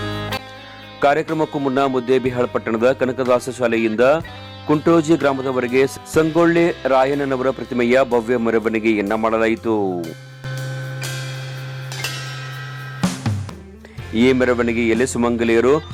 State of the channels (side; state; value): both; identical; correlation 1.00